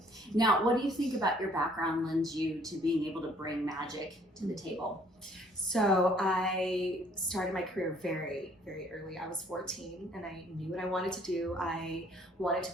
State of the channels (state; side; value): normal; both; correlation 0.61